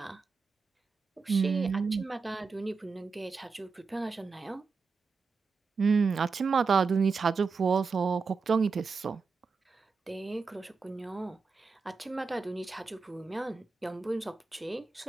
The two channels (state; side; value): quieter; left; 4.8 dB